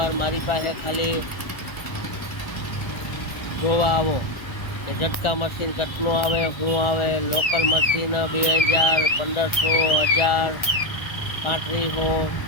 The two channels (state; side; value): late; right; 1.4 ms